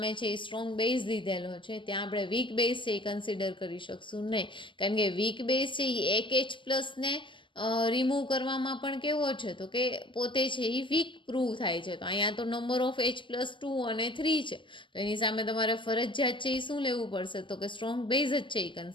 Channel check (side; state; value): right; late; 0.24 ms